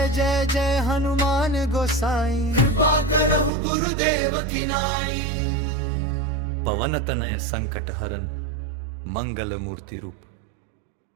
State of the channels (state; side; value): drops out; left; at 3.5 s